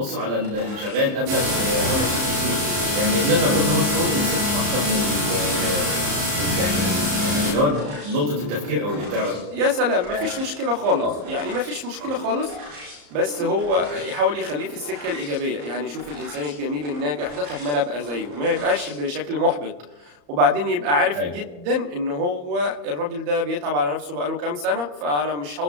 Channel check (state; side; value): late; left; 34 ms